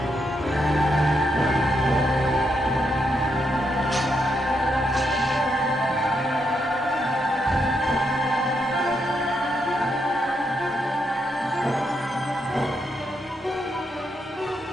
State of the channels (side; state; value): both; normal; correlation 0.80